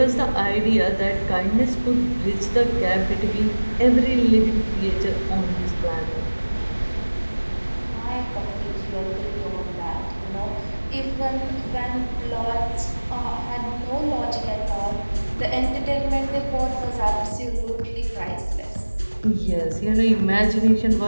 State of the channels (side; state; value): both; inverted; correlation -1.00